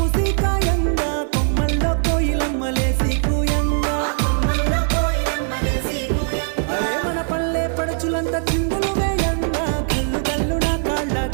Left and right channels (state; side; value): silent; left; 65 dB below the other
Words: కాయంగా కొమ్మల్లో కోయిలమ్మలేసి కూయంగా అరే మన పల్లె పడుచులంతా చిందులు వేయంగా గల్లు గల్లు నా కాళ్ళ